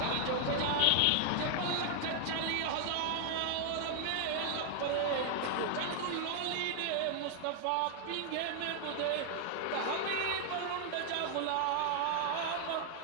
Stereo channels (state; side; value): different; both; correlation 0.00